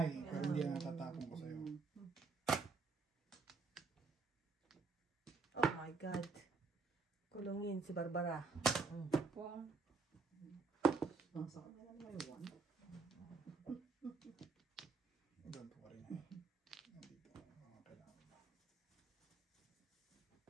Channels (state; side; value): quieter; left; 4.5 dB